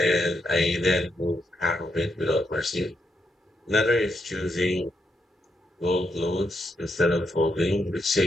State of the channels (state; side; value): normal; both; correlation 0.80